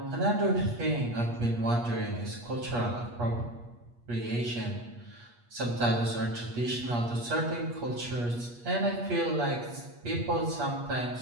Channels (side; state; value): left; late; 8.4 ms